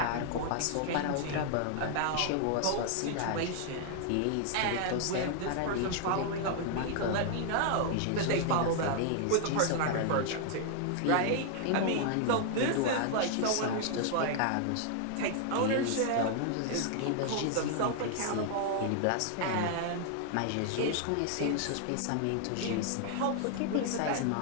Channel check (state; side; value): different; both; correlation 0.00